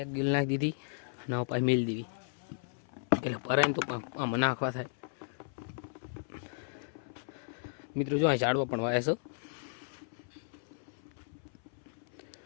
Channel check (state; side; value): silent; right; 55 dB below the other